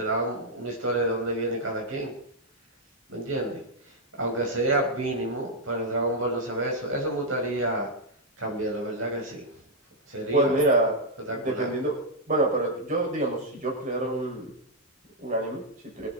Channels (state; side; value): normal; both; correlation -0.04